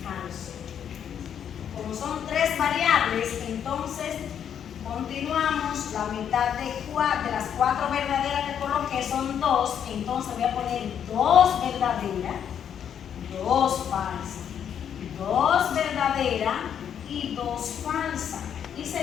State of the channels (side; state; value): right; quieter; 8.7 dB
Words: falso. Como son 3 variables, entonces continuamos. La mitad de las 4 verdaderas que coloqué son 2, entonces voy a poner 2 verdaderas, 2 falsas, 2 verdaderas y 2 falsas. Y